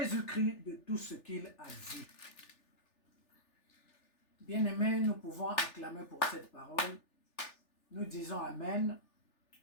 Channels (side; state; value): right; late; 3.4 ms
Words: de tout ce qu'il a vu. Bien-aimés, nous pouvons acclamer pour cette parole. Nous disons Amen.